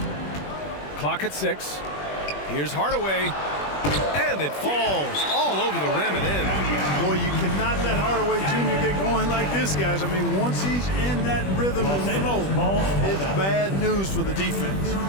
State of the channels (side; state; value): right; late; 21 ms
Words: Clock at 6. Here's Hardaway. And it falls all over the rim and in. Boy, you cannot let Hardaway Jr. get going like this, guys. I mean, once he's in that rhythm and flow, it's bad news for the defense.